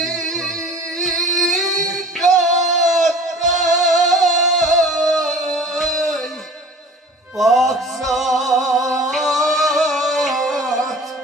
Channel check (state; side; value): normal; both; correlation 0.43